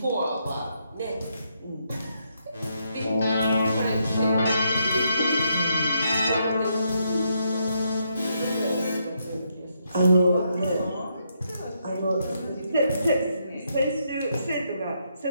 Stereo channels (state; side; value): inverted; both; correlation -0.78